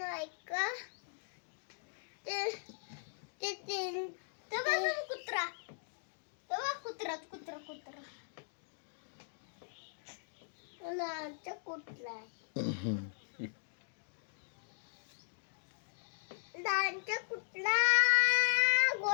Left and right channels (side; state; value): right; silent; digital silence